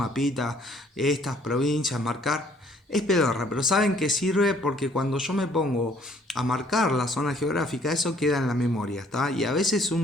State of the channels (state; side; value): normal; both; correlation 0.61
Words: estas provincias, marcar. Es pedorra, pero saben que sirve porque cuando yo me pongo a marcar la zona geográfica, eso queda en la memoria, ¿está? Y a veces